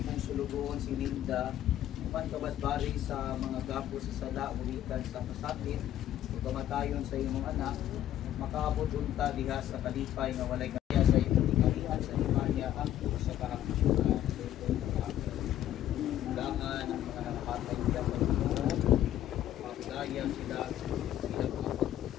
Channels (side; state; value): right; quieter; 12.1 dB